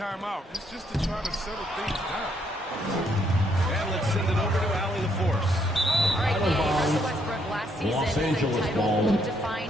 It's just to try to settle things down. And let's send it over to Allie the Force. All right, Russell Westbrook last season Los said Angeles title ball. won't define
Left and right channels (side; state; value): both; normal; correlation 0.72